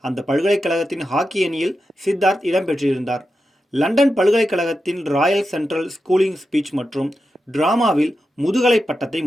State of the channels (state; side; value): normal; both; correlation 0.89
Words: அந்த பல்கலைக்கழகத்தின் ஹாக்கி அணியில் சித்தார்த் இடம்பெற்றிருந்தார். லண்டன் பல்கலைக்கழகத்தின் ராயல் சென்ட்ரல் ஸ்கூலிங் ஸ்பீச் மற்றும் டிராமாவில் முதுகலை பட்டத்தை